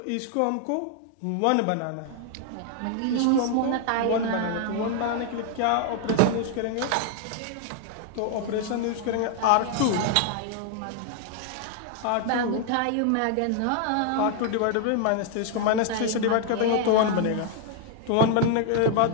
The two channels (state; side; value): different; both; correlation 0.00